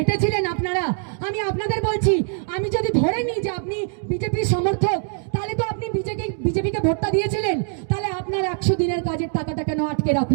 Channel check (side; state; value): left; silent; 55 dB below the other